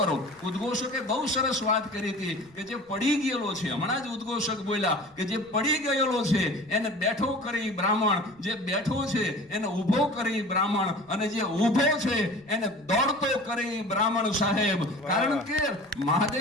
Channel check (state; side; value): noise; right; rumble, 30 dB below the sound